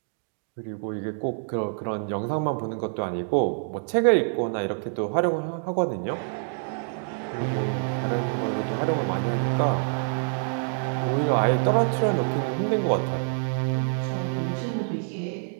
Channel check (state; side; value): silent; left; digital silence